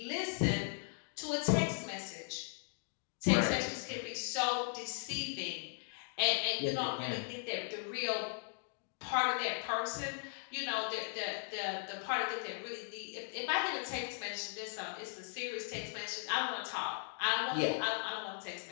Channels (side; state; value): right; silent; 53 dB below the other